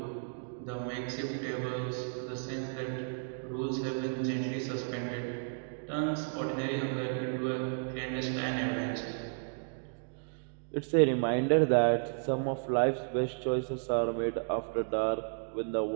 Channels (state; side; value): silent; left; digital silence